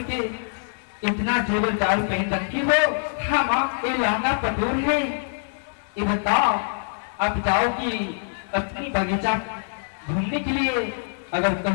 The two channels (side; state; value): right; silent; digital silence